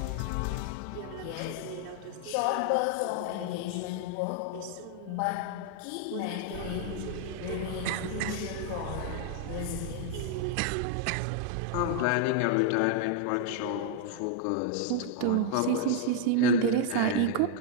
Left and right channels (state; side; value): different; both; correlation 0.00